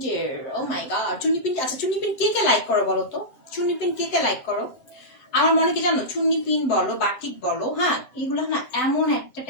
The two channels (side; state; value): right; late; 7.8 ms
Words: ও মাই গড, চুন্নি প্রিন্ট। আচ্ছা, চুন্নি প্রিন্ট কে কে লাইক করো বলো তো? চুন্নি প্রিন্ট কে কে লাইক করো? আমার মনে কি জানো, চুন্নি প্রিন্ট বলো, বাটিক বলো, হ্যাঁ, এগুলো না এমন একটা